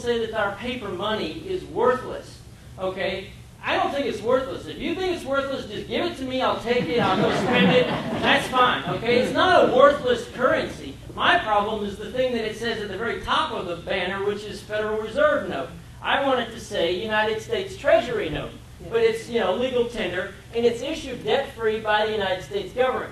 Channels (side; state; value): both; identical; correlation 1.00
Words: that our paper money is worthless. Okay? I don't think it's worthless. If you think it's worthless, just give it to me. I'll take it. I'll go spend it. That's fine. Okay? It's not a worthless currency. My problem is the thing that it says at the very top of the banner, which is Federal Reserve note. I want it to say United States Treasury note, but it's legal tender, and it's issued debt-free by the United States